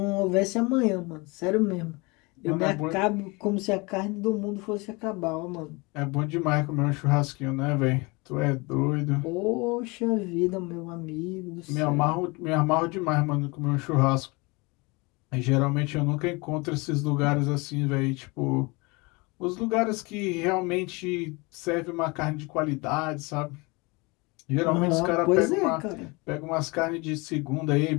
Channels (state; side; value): quieter; right; 26.6 dB